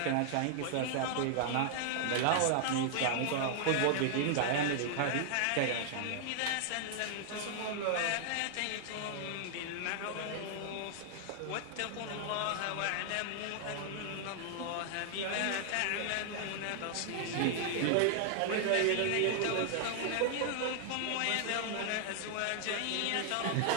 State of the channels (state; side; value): different; both; correlation -0.01